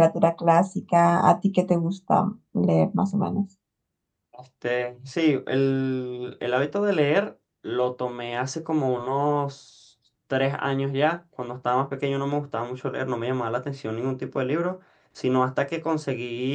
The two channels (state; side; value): identical; both; correlation 1.00